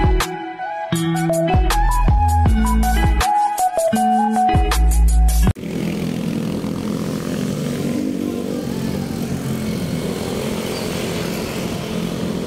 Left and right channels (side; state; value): both; identical; correlation 1.00